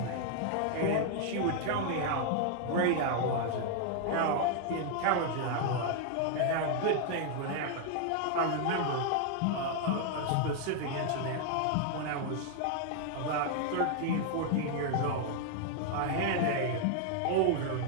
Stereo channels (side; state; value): both; different; correlation 0.00